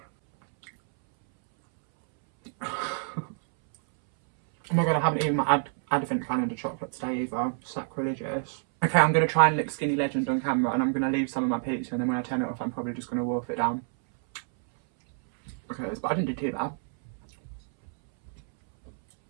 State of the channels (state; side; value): silent; left; 60 dB below the other